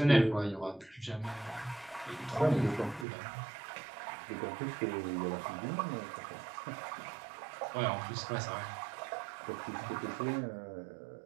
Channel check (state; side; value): drops out; left; at 3.1 s